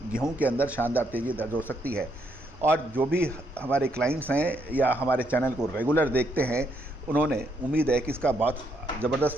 गेहूं के अंदर शानदार तेज़ी दर्ज हो सकती है और जो भी हमारे क्लाइंट्स हैं या हमारे चैनल को रेगुलर देखते हैं, उन्होंने उम्मीद है कि इसका बहुत ज़बरदस्त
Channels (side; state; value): both; normal; correlation 0.74